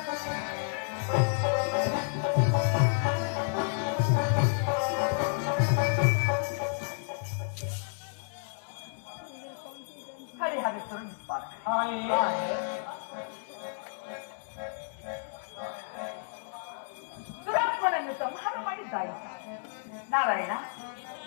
ಹರಿಹರೇಶ್ವರ ನಿತ್ಪಾದ ದುರಾತ್ಮನನ್ನು ಸಂಹಾರ ಮಾಡಿದ್ದಾಯಿತು. ನಾರಾಯಣ,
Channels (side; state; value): right; silent; digital silence